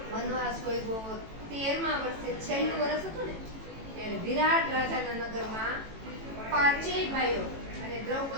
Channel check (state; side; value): late; left; 18 ms